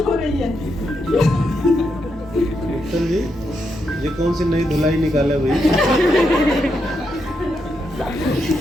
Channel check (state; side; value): noise; left; hum, 19 dB below the sound